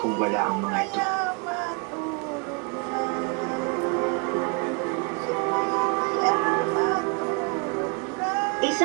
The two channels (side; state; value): left; quieter; 33.4 dB